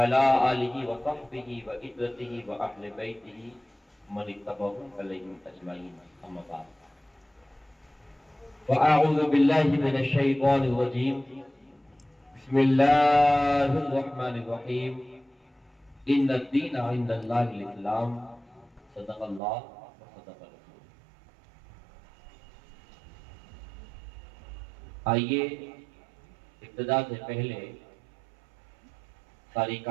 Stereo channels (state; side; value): drops out; left; at 19.4 s